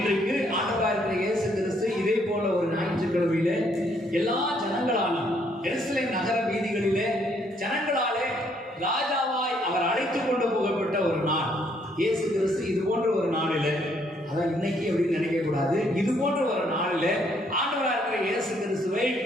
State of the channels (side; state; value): both; normal; correlation 0.69